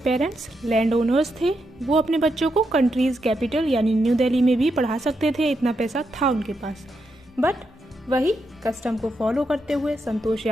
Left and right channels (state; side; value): normal; both; correlation 0.83